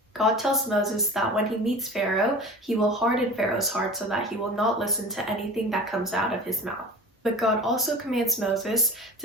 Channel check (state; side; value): normal; both; correlation 0.37